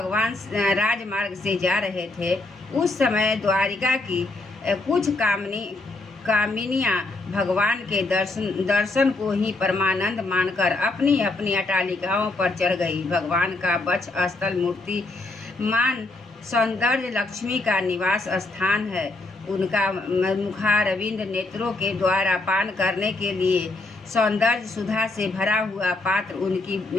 राजमार्ग से जा रहे थे, उस समय द्वारिका की कुछ कामिनियाँ भगवान के दर्शन को ही परमानंद मानकर अपनी अपनी अटालिकाओं पर चढ़ गई। भगवान का वक्ष स्थल मूर्तिमान सौंदर्य लक्ष्मी का निवास स्थान है। उनका मुखारविंद नेत्रों के द्वारा पान करने के लिए सौंदर्य सुधा से भरा हुआ पात्र, उनकी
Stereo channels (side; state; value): right; quieter; 3.1 dB